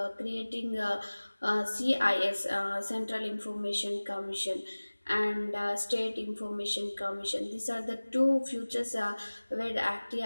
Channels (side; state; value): both; inverted; correlation -1.00